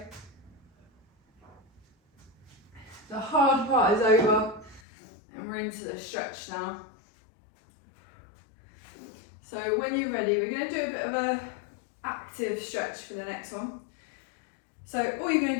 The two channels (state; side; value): drops out; right; at 4.8 s